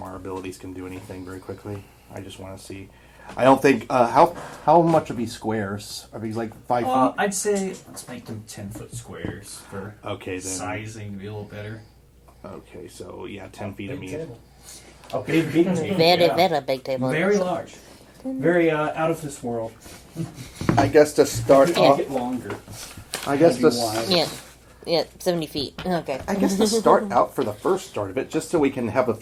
abilities can do anything very quickly. I just want to see. I don't think how much are these squares? Are these like 5 feet? I'd say let's make them 10-foot squares for Okay, then. sizing to be a little better. Okay, so yeah, 10 feet. I Big mean, table. Okay, big table. Very, yeah. very big table. Very large. Very out of this world. I guess to start Make off. it longer. I guess Maybe to. wide. Yeah. Yeah, 70 feet. Okay. I guess to start out for the first start of it, just so we can have a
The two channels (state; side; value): identical; both; correlation 1.00